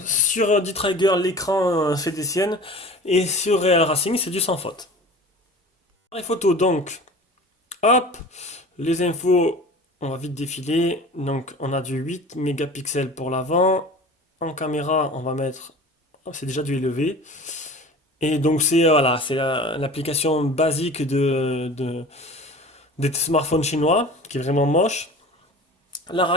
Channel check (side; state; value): both; normal; correlation 0.39